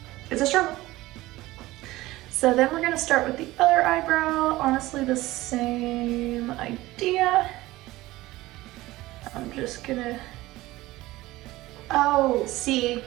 It's a struggle. So then we're gonna start with the other eyebrow. Honestly, the same idea. I'm just gonna, oh, see,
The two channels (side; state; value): left; quieter; 18.2 dB